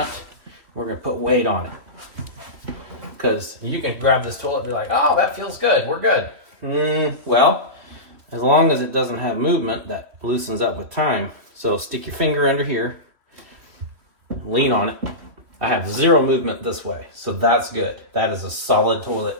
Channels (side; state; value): left; late; 3.1 ms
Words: We're gonna put weight on it. Because you can grab this toilet and be like, oh, that feels good, we're good. Well, as long as it doesn't have movement, that loosens up with time. So stick your finger under here, lean on it. I have zero movement this way, so that's good. That is a solid